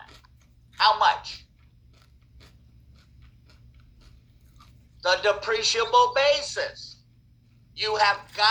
it. How much? The depreciable basis. You have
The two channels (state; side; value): identical; both; correlation 1.00